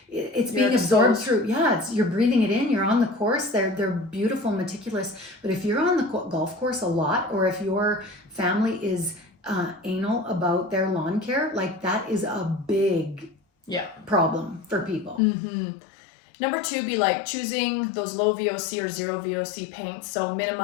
it's being absorbed through, you're breathing it in, you're on the course, they're beautiful, meticulous. But if you're on the golf course a lot, or if your family is anal about their lawn care, like that is a big problem for people. Mm-hmm. Number two, be like choosing those low VOC or zero VOC paints. So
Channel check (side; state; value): right; drops out; at 15.2 s